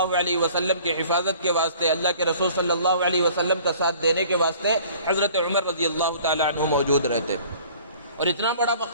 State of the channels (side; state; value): both; inverted; correlation -0.51